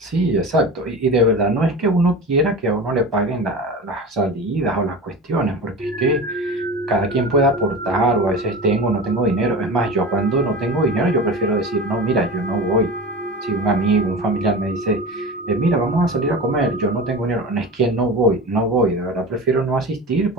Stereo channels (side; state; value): both; normal; correlation 0.31